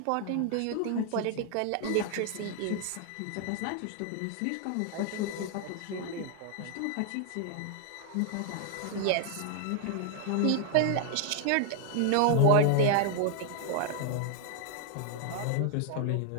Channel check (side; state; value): both; different; correlation 0.00